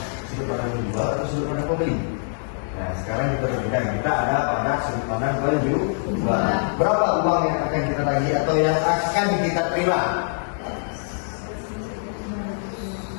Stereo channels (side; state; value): right; silent; digital silence